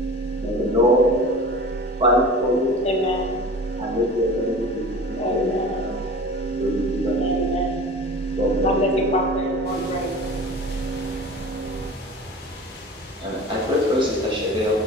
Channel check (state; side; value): normal; both; correlation 0.38